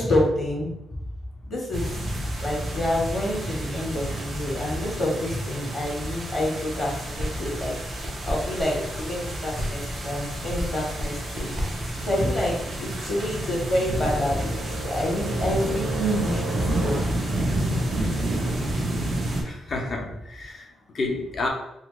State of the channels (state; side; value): normal; both; correlation 0.83